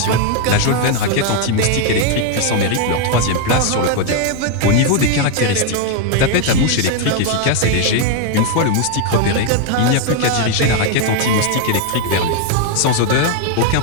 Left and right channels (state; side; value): different; both; correlation 0.00